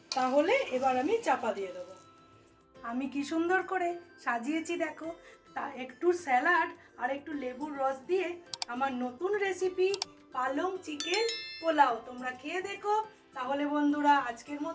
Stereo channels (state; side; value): identical; both; correlation 1.00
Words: তাহলে এবার আমি চাপা দিয়ে দেবো। আমি কি সুন্দর করে সাজিয়েছি দেখো, তা একটু স্যালাড আর একটু লেবুর রস দিয়ে আমার নতুন রেসিপি পালং চিকেন পোলাও তোমরা খেয়ে দেখো। তাহলে বন্ধুরা আজকের